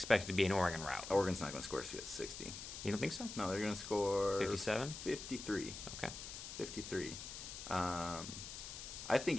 to be an Oregon rout. Oregon's not going to score 60. You don't think so? No, they're going to score 57? 53. Okay. 53. I think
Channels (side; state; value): left; noise; hiss, 9 dB below the sound